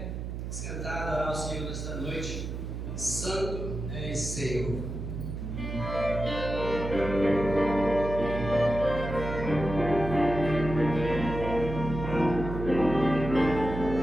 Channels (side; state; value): right; noise; hum, 6 dB below the sound